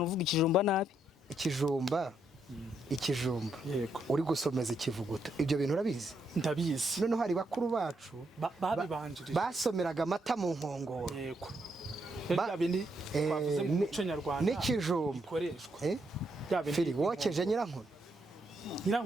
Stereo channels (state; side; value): normal; both; correlation 0.78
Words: uvuga ikijumba nabi. ikijumba yego uri gusomeza ikivuguto ibyo bintu urabizi. ndabizi. noneho hari bakuru bacu babibanjirije basomeraga amata mu nkongoro. yego bindi twavuze mu muco nyarwanda n'ikijumba bikoreshwa. Fili wokeje